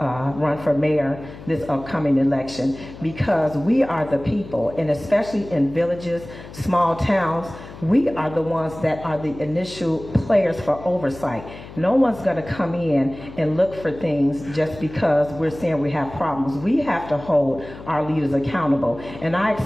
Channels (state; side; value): noise; left; hum, 15 dB below the sound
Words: for mayor this upcoming election, because we are the people, and especially in villages, small towns, we are the ones that are the initial players for oversight. No one's going to come in and look for things just because we're saying we have problems. We have to hold our leaders accountable, and I